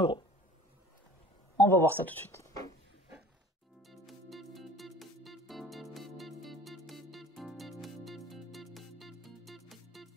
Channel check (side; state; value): both; normal; correlation 0.48